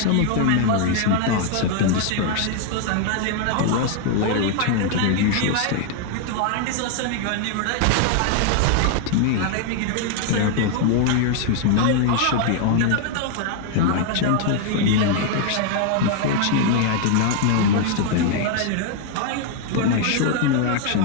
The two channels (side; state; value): both; different; correlation 0.00